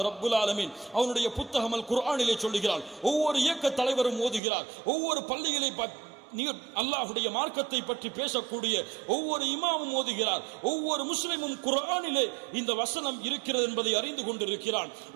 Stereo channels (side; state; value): left; drops out; at 4.4 s